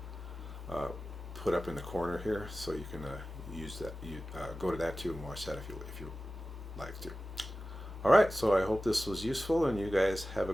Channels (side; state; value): both; normal; correlation 0.95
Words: put up in the corner here, so you can use that. You go to that too and watch that if you like to. All right, so I hope this was useful, and you guys have a